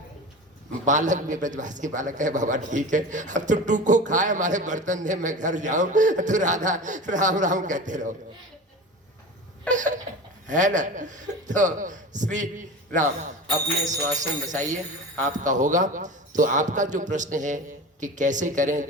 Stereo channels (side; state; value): both; normal; correlation 0.31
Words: बालक भी ब्रजवासी बालक है, बाबा ठीक है, अब तो टू को खाए हमारे बर्तन दे, मैं घर जाऊं तो राधा राम राम कहते रहो, है ना? तो श्री राम अपने श्वासन बसाइए, आपका होगा। तो आपका जो प्रश्न है कि कैसे करें,